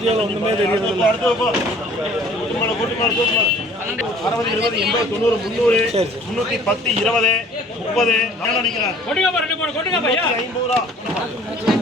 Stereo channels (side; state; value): both; normal; correlation 0.52